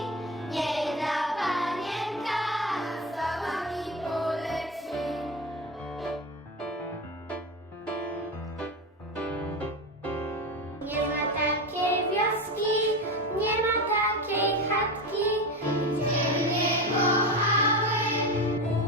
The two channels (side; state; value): both; normal; correlation 0.22